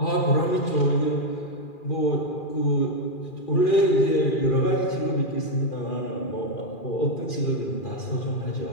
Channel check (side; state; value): right; late; 2.4 ms